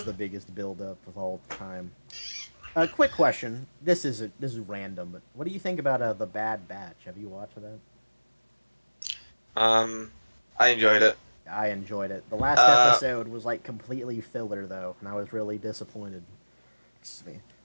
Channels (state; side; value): inverted; both; correlation -1.00